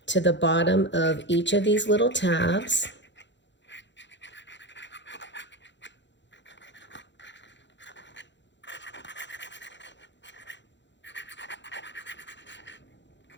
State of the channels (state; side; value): late; right; 0.52 ms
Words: to the bottom of each of these little tabs.